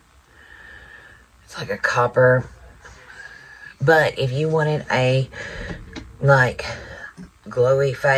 It's like a copper. But if you wanted a, like, glowy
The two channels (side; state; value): both; identical; correlation 1.00